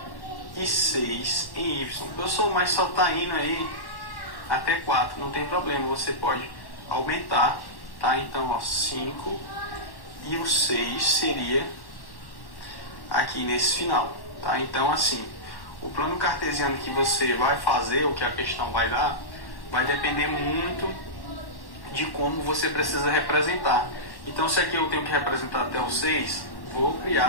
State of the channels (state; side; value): late; right; 1.1 ms